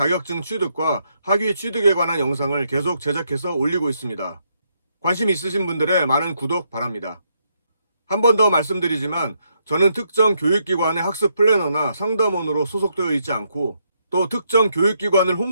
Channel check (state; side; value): inverted; both; correlation -0.77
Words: 취득과 학위 취득에 관한 영상을 계속 제작해서 올리고 있습니다. 관심 있으신 분들의 많은 구독 바랍니다. 한 번 더 말씀드리지만 저는 특정 교육기관의 학습 플래너나 상담원으로 소속되어 있지 않고 또 특정 교육기관을